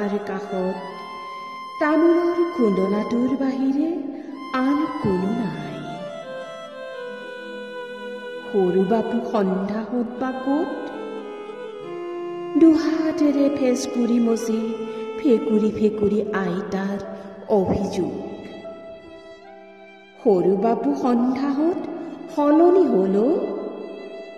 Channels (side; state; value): both; identical; correlation 1.00